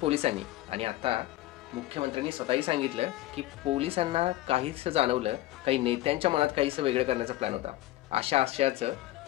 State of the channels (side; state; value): right; quieter; 16.0 dB